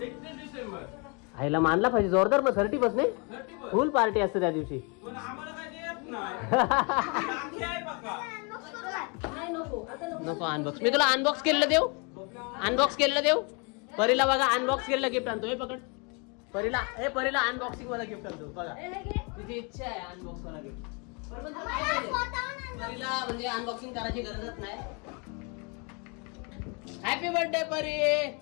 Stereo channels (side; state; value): right; quieter; 33.1 dB